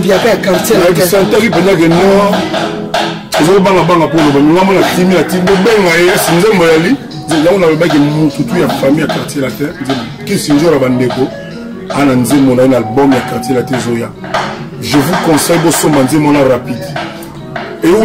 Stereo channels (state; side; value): identical; both; correlation 1.00